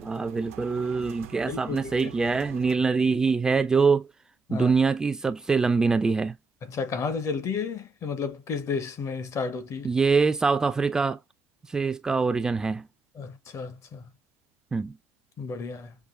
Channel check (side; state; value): left; quieter; 3.4 dB